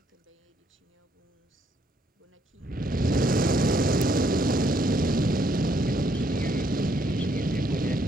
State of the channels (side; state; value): both; normal; correlation 0.71